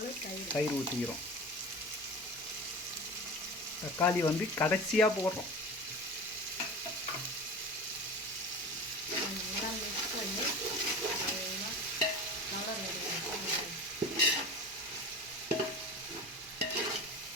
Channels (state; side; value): noise; right; hum, 28 dB below the sound